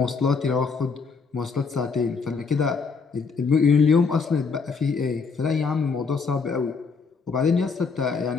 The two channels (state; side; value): quieter; right; 5.0 dB